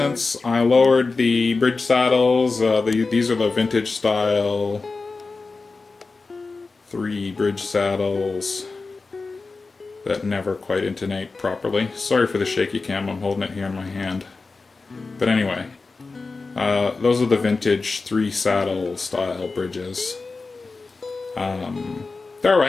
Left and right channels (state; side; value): quieter; right; 4.0 dB